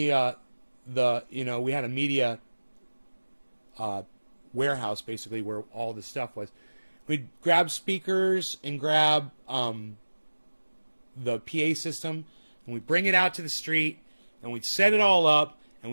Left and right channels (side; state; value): both; inverted; correlation -1.00